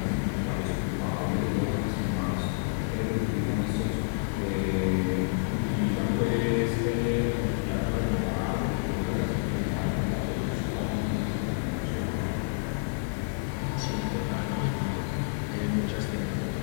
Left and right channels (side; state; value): right; silent; digital silence